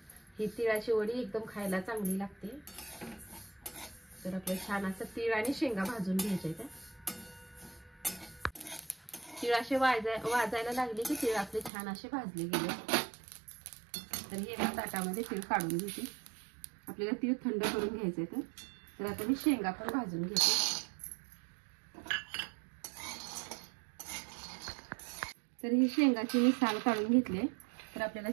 ही तिळाची वडी एकदम खायला चांगली लागते। तर आपल्याला छान असं तीळ आणि शेंगा भाजून घ्यायचे आहेत। तीळ असे वाजायला लागले की तीळ आपले छान असे भाजले गेले। तर हे एका ताटामध्ये तीळ काढून घेते। आपल्याला तीळ थंड करून घ्यायचे। तर आता मी शेंगा पण भाजून घेते। तर ही शेंगाची मी साल काढून घेतले। तर आपल्याला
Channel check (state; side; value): drops out; left; at 11.7 s